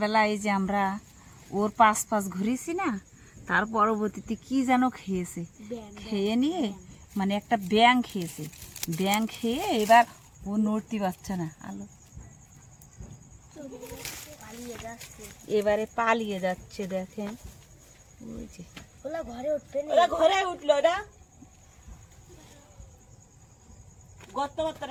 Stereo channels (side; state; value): both; identical; correlation 1.00